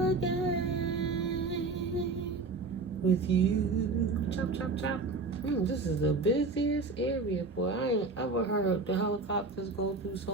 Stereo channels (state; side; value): quieter; left; 3.8 dB